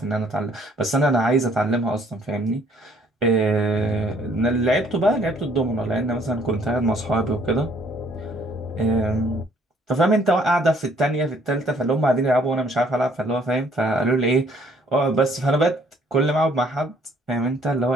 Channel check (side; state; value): both; normal; correlation 0.62